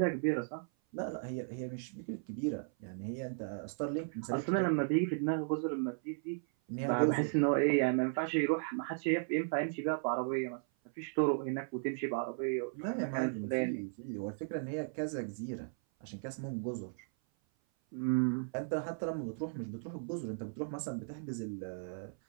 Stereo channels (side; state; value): left; silent; 54 dB below the other